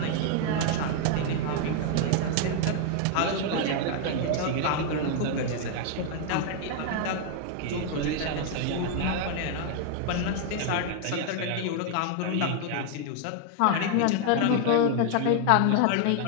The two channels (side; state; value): both; different; correlation 0.00